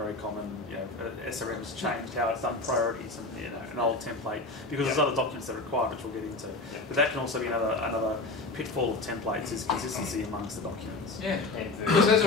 common. SRM's changed how it's done priorities and an old template because there's other documents that are required, which we'll get into. But that can also be another pitfall of templates is consistency amongst the documents. Yeah, because as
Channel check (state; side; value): quieter; right; 3.1 dB